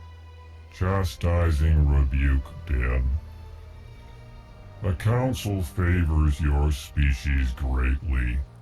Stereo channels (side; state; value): both; identical; correlation 1.00